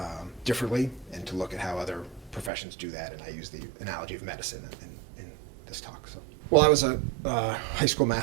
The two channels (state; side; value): drops out; left; at 2.5 s